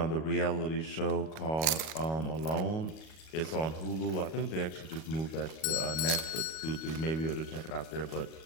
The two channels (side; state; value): right; late; 38 ms